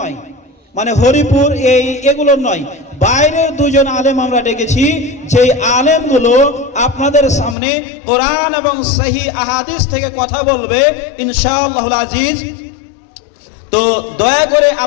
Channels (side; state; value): right; drops out; at 7.6 s